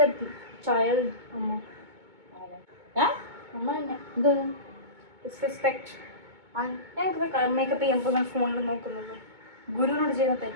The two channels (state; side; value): late; left; 2.2 ms